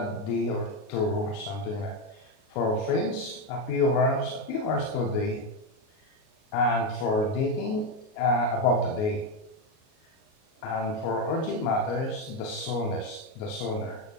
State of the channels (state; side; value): late; right; 38 ms